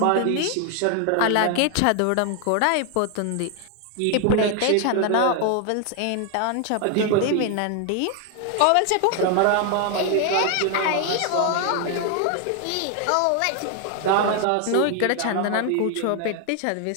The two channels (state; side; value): different; both; correlation 0.00